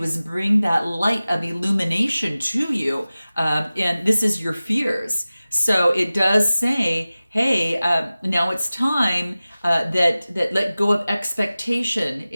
is bring that light of illumination to you. And this is your fears. So it does say, hey, now it's time that let go of expectation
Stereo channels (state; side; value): inverted; both; correlation -0.97